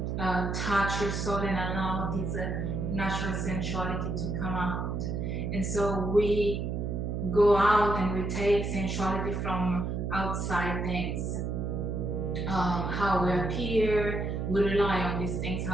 touch your soul and allow this natural sensuality to come out. And so we go out and we take sensuality from outside things. How we appear, we rely on these things,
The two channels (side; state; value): right; noise; hum, 2 dB below the sound